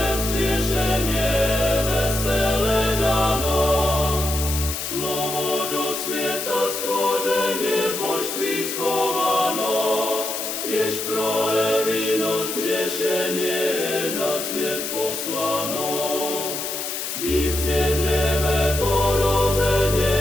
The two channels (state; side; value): noise; left; hiss, 4 dB below the sound